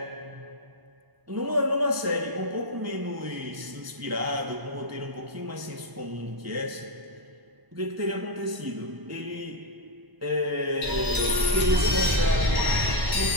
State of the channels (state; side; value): late; left; 1.0 ms